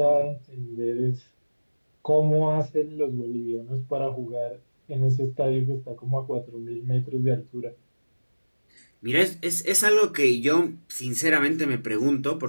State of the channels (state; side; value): inverted; both; correlation -1.00